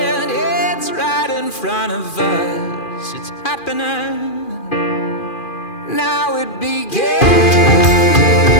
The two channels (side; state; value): right; late; 2.4 ms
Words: it's right in front of us. It's happening. Now it begins,